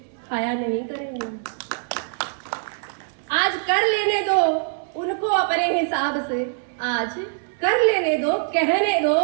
खाया नहीं करेंगे। आज कर लेने दो उनको अपने हिसाब से, आज कर लेने दो, कहने दो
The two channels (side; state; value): left; silent; 63 dB below the other